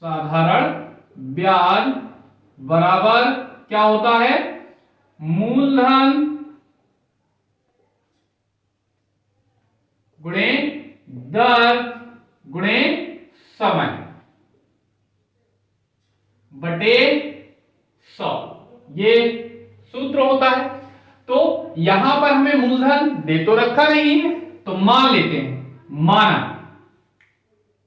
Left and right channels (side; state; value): both; identical; correlation 1.00